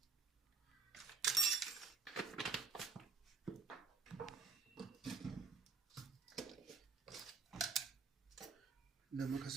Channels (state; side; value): quieter; left; 4.7 dB